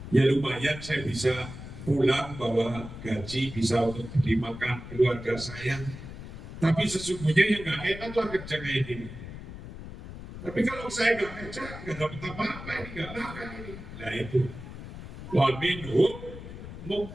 ya lumayan saya bisa pulang bawa gaji, bisa untuk beli makan keluarga saya. Tapi sesungguhnya yang nggak enak lah kerja kayak gini. Tapi kalau saya nggak kerja, nggak dapat apa-apa, ini nggak makan ini. Nah itu, wa minhum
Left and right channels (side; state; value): left; noise; rumble, 12 dB below the sound